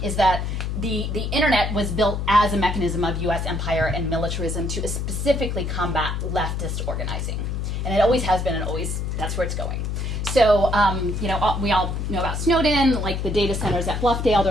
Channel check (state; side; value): noise; left; hum, 2 dB below the sound